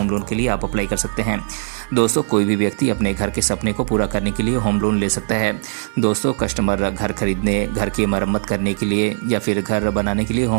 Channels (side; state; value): left; silent; digital silence